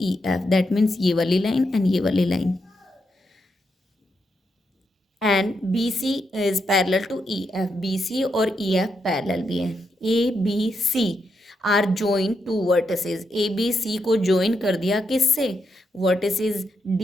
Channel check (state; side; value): normal; both; correlation 0.82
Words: EF, that means ये वाली line and ये वाली line, and BC is parallel to EF, BC और EF parallel भी है. ABC are join to vertices, ABC को ज्वाइन कर दिया किससे, वर्टिसेस